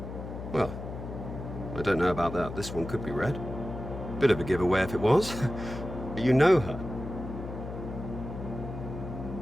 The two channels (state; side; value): noise; left; hum, 8 dB below the sound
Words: Well, I don't know about that. This one could be red. Bit of a giveaway if it was. But you know her.